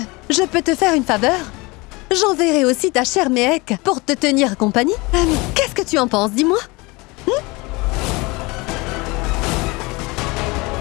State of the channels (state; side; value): quieter; right; 24.8 dB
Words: je peux te faire une faveur. J'enverrai aussi ta chère Mehek pour te tenir compagnie. Qu'est-ce que tu en penses, dis-moi?